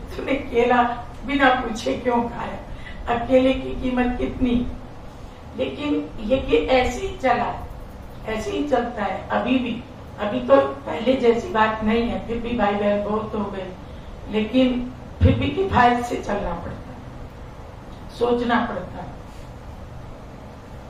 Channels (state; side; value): identical; both; correlation 1.00